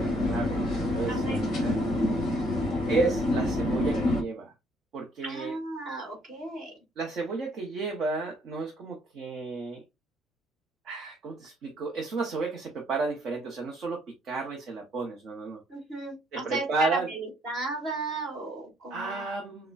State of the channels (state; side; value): normal; both; correlation 0.66